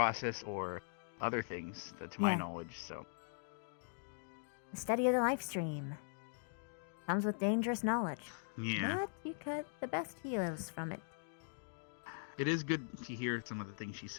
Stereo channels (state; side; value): silent; right; digital silence